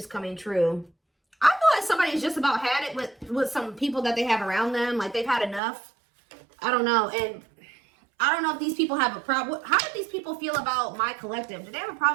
coming true. I feel like somebody's just about had it with some people that they have around them. Like they've had enough. I don't know. And I don't know if these people have a problem. How do these people feel about my collective? Do they have a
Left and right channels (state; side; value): drops out; left; at 5.6 s